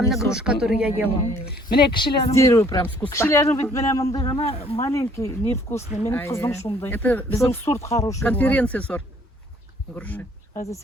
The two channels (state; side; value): normal; both; correlation 0.60